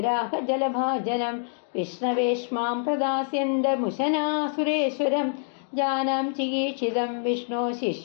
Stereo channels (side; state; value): right; silent; digital silence